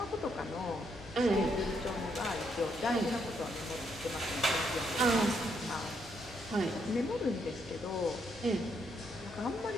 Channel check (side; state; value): both; normal; correlation 0.75